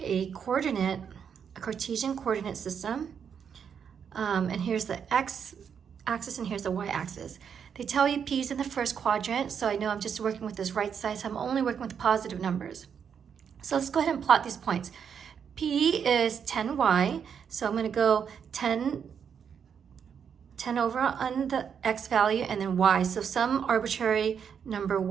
a Cartesian coordinate system, and here's the X axis and here's the Y axis. They tell you P is in the first quadrant, so I know I'm just working with this right side, so I'm only working with positive numbers. So let's go ahead and plot these points. P is 10y, so I'm going to go 10 over on the x value and then y, so some arbitrary number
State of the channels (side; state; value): left; quieter; 7.4 dB